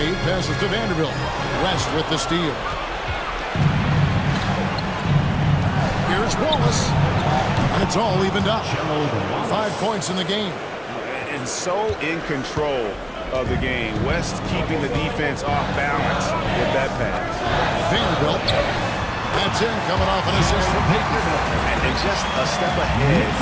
passes to Vanderbilt. West with the steal. Here's Wallace. And it's all evened up. 5 points in the game. And so in control of the game. West keeping the defense off balance with that pass. Vanderbilt. That's in, coming off an assist from Payton. And just a step ahead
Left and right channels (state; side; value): identical; both; correlation 1.00